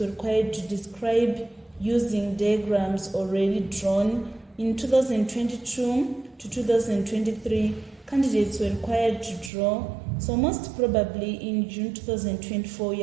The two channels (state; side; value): drops out; left; at 9.5 s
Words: required to describe using diagrams already drawn. In 2022 to 2023, candidates were required to draw. So most probably in June 2024, you